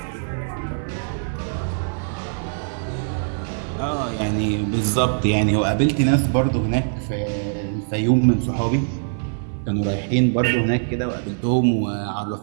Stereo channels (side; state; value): left; silent; 56 dB below the other